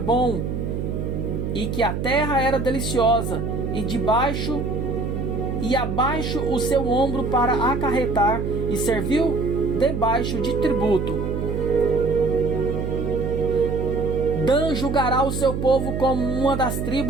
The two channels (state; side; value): noise; right; hum, 3 dB below the sound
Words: e que a terra era deliciosa, e abaixo o seu ombro para acarretar, e serviu debaixo de tributo. Dan julgará o seu povo como uma das